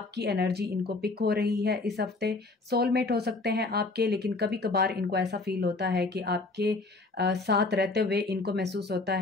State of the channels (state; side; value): quieter; right; 3.4 dB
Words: एनर्जी इनको पिक हो रही है इस हफ्ते। सोलमेट हो सकते हैं आपके, लेकिन कभी कभार इनको ऐसा फील होता है कि आपके साथ रहते हुए इनको महसूस होता